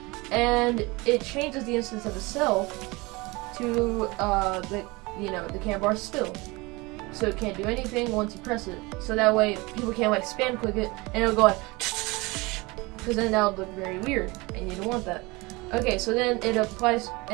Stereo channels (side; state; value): left; quieter; 24.1 dB